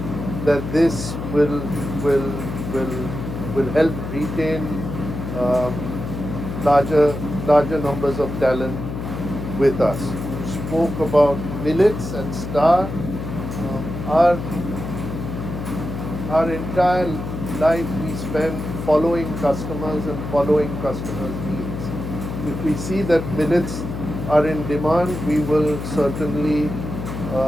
that this will help retain larger numbers of talent with us. You spoke about millets and Star. Our entire life we spend following customers and following customers' needs. If we see that millets are in demand, we will certainly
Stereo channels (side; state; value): left; noise; hum, 6 dB below the sound